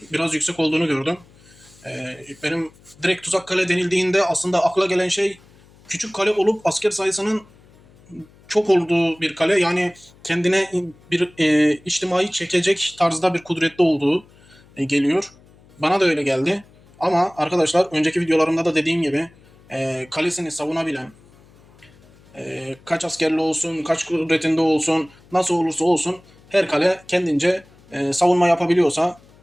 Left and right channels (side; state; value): left; noise; hum, 27 dB below the sound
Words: biraz yüksek olduğunu gördüm. Benim direkt tuzak kale denildiğinde aslında akla gelen şey küçük kale olup asker sayısının çok olduğu bir kale. Yani kendine bir içtimai çekecek tarzda bir kudretli olduğu geliyor. Bana da öyle geldi. Ama arkadaşlar önceki videolarımda da dediğim gibi kalesini savunabilen, kaç askerli olsun, kaç kudretinde olsun, nasıl olursa olsun her kale kendince savunma yapabiliyorsa